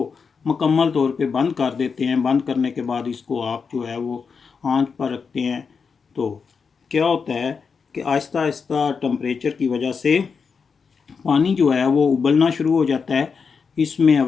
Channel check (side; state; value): right; quieter; 5.6 dB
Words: मुकम्मल तौर पे बंद कर देते हैं। बंद करने के बाद इसको आप जो है वो आंच पर रखते हैं। तो क्या होता है कि आहिस्ता आहिस्ता टेम्परेचर की वजह से पानी जो है वो उबलना शुरू हो जाता है। इसमें